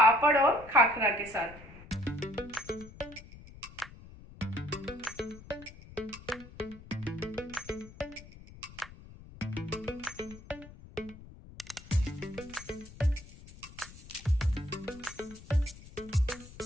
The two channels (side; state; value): left; noise; rumble, 18 dB below the sound